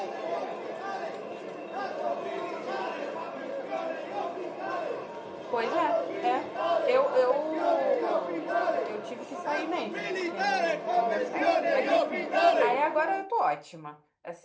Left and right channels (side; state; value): both; identical; correlation 1.00